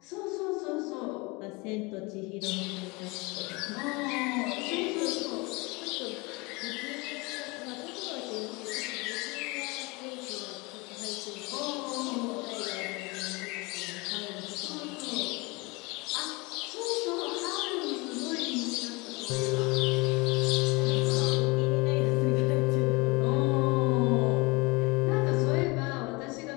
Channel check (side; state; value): right; quieter; 26.1 dB